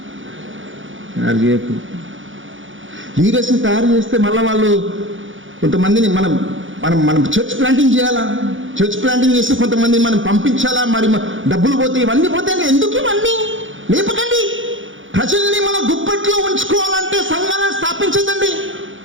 తయారు చేయకు. లీడర్స్ని తయారు చేస్తే మళ్ళీ వాళ్ళు కొంతమందిని మనం చర్చ్ ప్లాంటింగ్ చేయాలా. చర్చ్ ప్లాంటింగ్ చేస్తే కొంతమంది మనం పంపించాలా. మరి డబ్బులు పోతాయి, ఇవన్నీ పోతాయి. ఎందుకు ఇవన్నీ? లేపకండి. ప్రజల్ని మన గుప్పట్లో ఉంచుకోవాలంటే సంఘాలను స్థాపించదండి.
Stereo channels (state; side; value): late; left; 0.56 ms